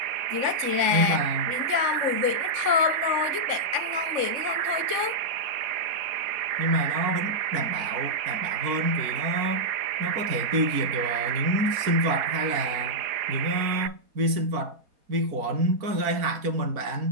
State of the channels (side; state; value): left; late; 4.2 ms